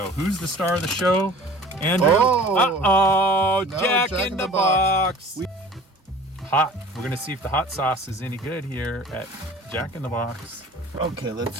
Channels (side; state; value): both; normal; correlation 0.45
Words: Who's the star of the show? Andrew? Oh! No, Jack in the Box. Hot. We're going to see if the hot sauce is any good here at Jack in the Box. Okay, let's